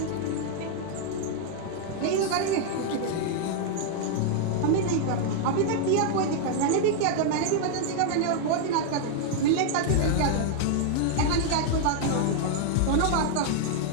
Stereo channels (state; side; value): different; both; correlation -0.01